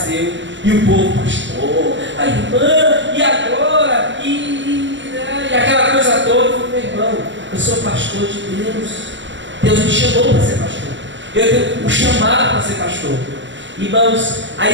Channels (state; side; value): late; left; 0.54 ms